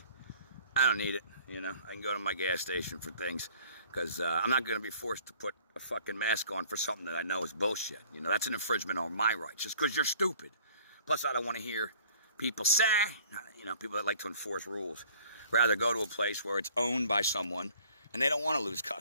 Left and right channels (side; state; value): both; inverted; correlation -0.54